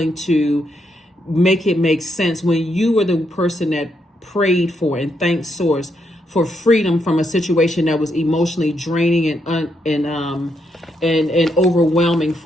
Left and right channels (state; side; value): normal; both; correlation 0.78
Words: to make it make sense, when you were the person that prayed for and thanked Source for freedom from a situation that was emotionally draining and overwhelming